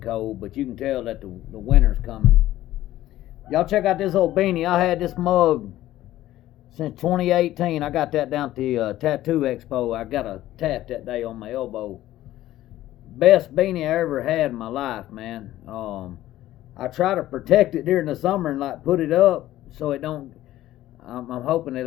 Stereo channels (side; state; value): right; quieter; 14.5 dB